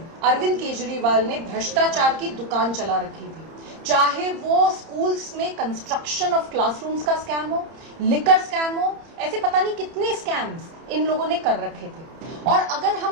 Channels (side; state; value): left; late; 30 ms